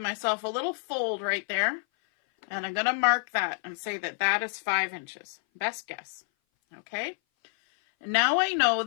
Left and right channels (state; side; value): silent; right; 58 dB below the other